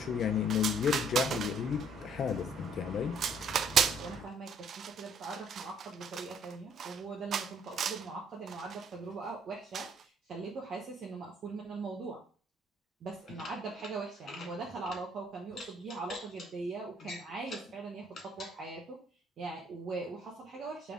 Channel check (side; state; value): both; normal; correlation 0.63